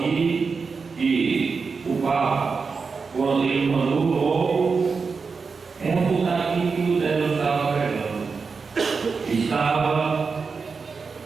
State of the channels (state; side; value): quieter; left; 5.0 dB